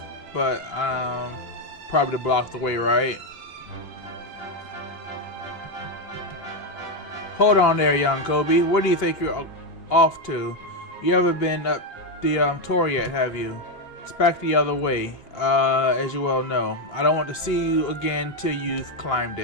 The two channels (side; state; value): right; late; 2.8 ms